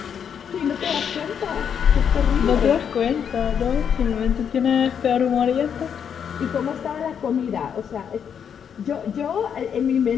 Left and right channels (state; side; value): quieter; right; 7.8 dB